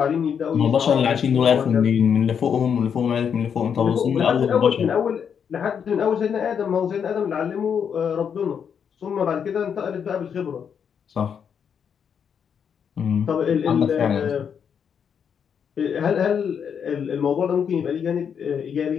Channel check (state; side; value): quieter; right; 7.4 dB